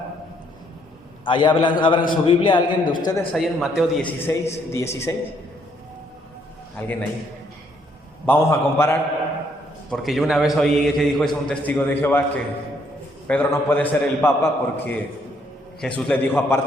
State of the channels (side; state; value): both; normal; correlation 0.69